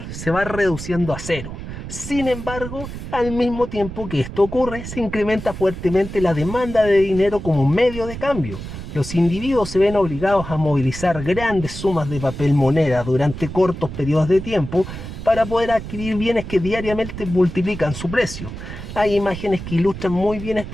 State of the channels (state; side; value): noise; right; rumble, 9 dB below the sound